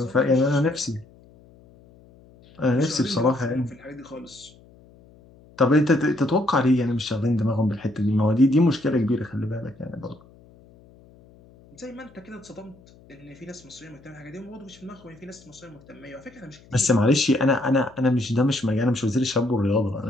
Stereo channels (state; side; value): noise; left; hum, 26 dB below the sound